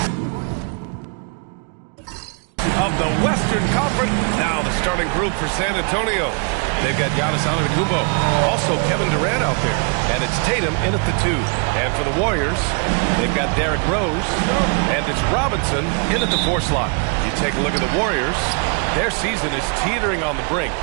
of the Western Conference. Now the starting group for San Antonio. They've got Giannis Antetokounmpo, also Kevin Durant out there, and it's Tatum in at the 2. And for the Warriors, they've got Derrick Rose, and it's Robinson in at the 4 slot. You take a look at the Warriors, their season is teetering on the brink,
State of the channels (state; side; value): quieter; left; 38.2 dB